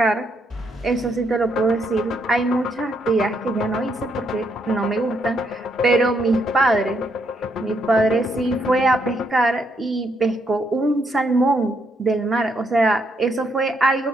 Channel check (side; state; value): both; normal; correlation 0.75